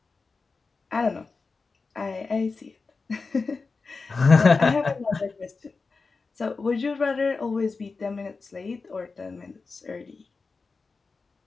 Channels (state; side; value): quieter; right; 4.3 dB